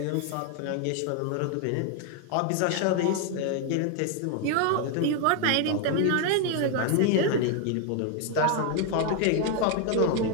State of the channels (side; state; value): both; different; correlation 0.00